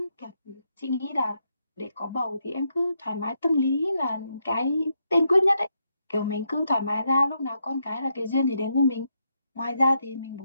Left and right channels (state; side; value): inverted; both; correlation -0.80